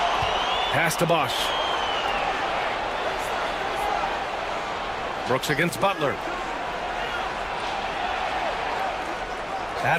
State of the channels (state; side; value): identical; both; correlation 1.00